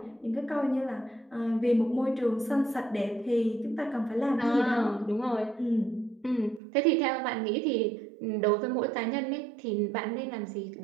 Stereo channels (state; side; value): drops out; left; at 6.6 s